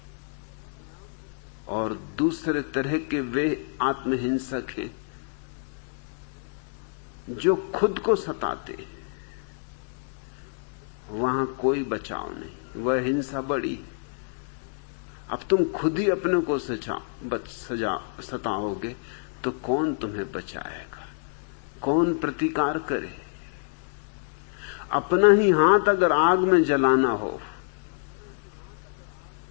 और दूसरे तरह के वे आत्महिंसक हैं जो खुद को सताते हैं। वहां कोई बचाव नहीं, वह हिंसा बड़ी। अब तुम खुद ही अपने को सताओगे तो कौन तुम्हें बचाएगा, कौन प्रतिकार करे? अपना ही हाथ अगर आग में जलाना हो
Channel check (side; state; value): right; silent; 60 dB below the other